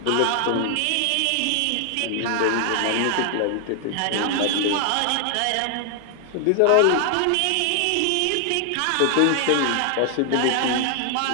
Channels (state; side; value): different; both; correlation 0.00